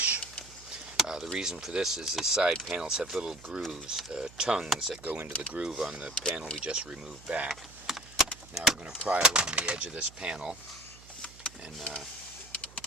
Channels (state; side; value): noise; right; hum, 21 dB below the sound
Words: The reason for this is the side panels have little grooves, tongues that go into the groove on the panel we just removed back. Now we're going to pry along the edge of this panel and